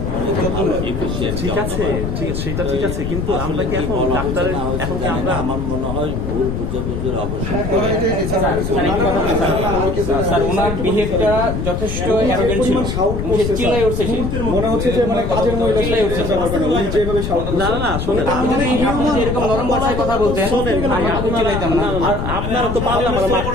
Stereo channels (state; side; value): noise; left; rumble, 3 dB below the sound